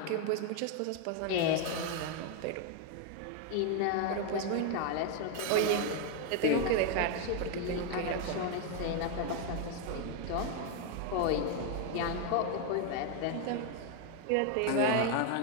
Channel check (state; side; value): different; both; correlation 0.01